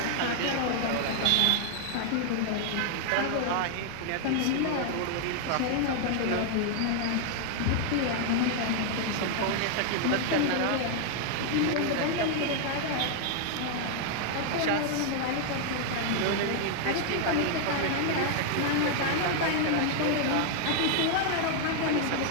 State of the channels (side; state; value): both; different; correlation 0.00